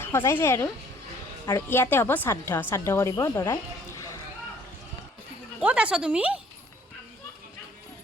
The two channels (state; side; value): normal; both; correlation 0.59